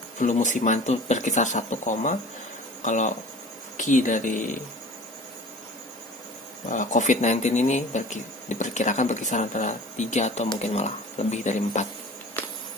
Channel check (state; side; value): normal; both; correlation 0.42